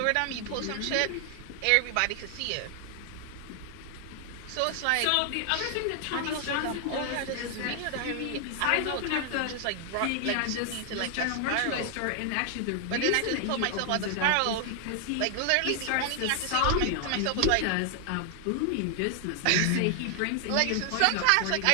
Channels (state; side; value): different; both; correlation 0.00